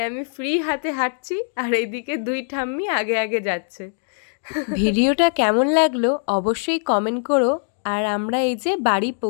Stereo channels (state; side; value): silent; right; digital silence